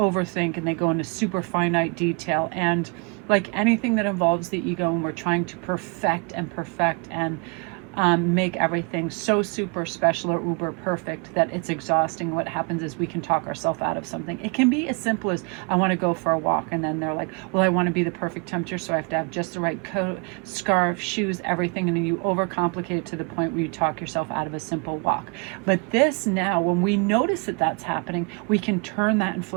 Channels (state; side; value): quieter; left; 34.3 dB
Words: and they go into super finite detail. And like anything that involves the ego, and we're trying to perfect and make everything so super special or uber perfect that it's exhausting. What happens is we can talk ourselves out of something. It can be as simple as, I want to go for a walk, and then they're like, well, I want to be the perfect tempter, so I have to have just the right coat, scarf, shoes, everything, and then you overcomplicate it to the point where you talk yourself out of a simple walk. But this now, when we notice that that's happening, we can turn that and